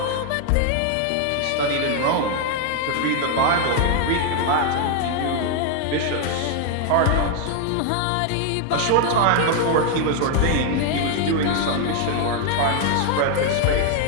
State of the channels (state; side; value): different; both; correlation 0.00